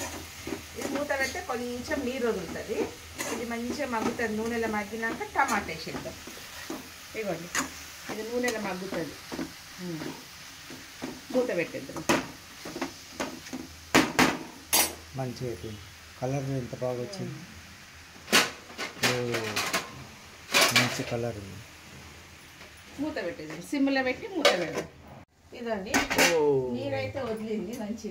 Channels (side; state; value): both; identical; correlation 1.00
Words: ఇది మూత పెడితే కొంచెం నీరు వదులుతుంది. ఇది మంచిగా మగ్గుతుంది. నూనెలో మగ్గినాక టమాటా వేసేద్దాం. ఇవ్వండి, ఇది నూనెలో మగ్గుతుంది. మూత పెట్టేద్దాం. మంచిగా అయిపోయింది. కలర్ ఎంత బాగా వచ్చింది. మంచి కలర్ ఉంది. మూత పెట్టేద్దాం. సిమ్లో పెట్టి మూత పెడదాం. ఇదండి, నీరైతే వదిలింది